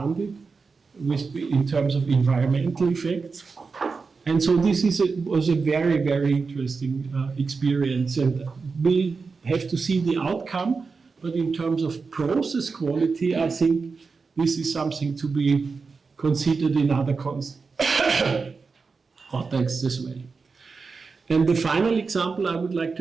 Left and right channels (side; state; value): left; quieter; 4.7 dB